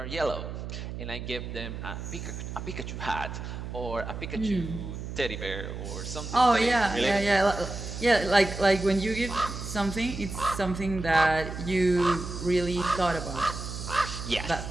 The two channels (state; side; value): noise; right; hum, 7 dB below the sound